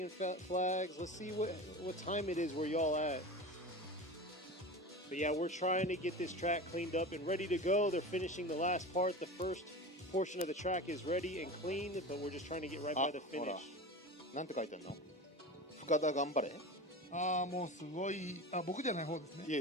flags. Let's see what time it is where y'all at. But yeah, we're trying to get this track cleaned up and ready to go. They're finishing the last part. The first portion of the track is ready and clean, but we're just trying to get right by the ほら finish. なんて書いてんの？深田頑張れ。ああ、もうすごい。あ、僕じゃない方ですね。いえ、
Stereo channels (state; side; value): normal; both; correlation 0.30